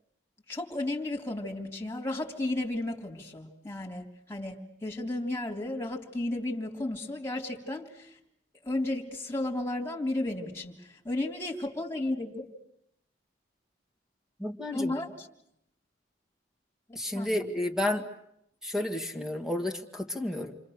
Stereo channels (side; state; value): both; normal; correlation 0.79